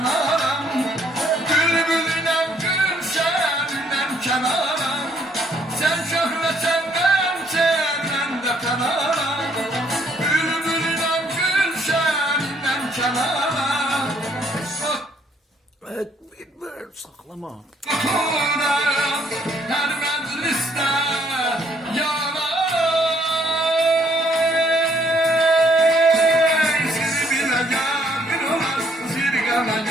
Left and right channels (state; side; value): normal; both; correlation 0.67